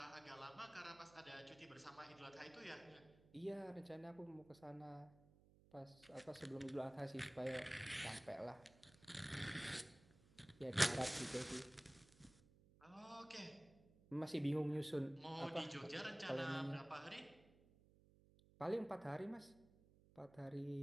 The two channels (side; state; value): right; noise; hum, 25 dB below the sound